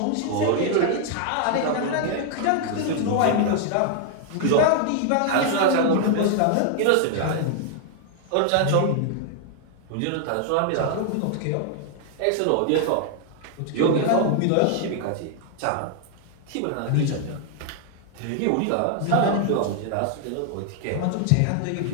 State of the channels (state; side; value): different; both; correlation 0.00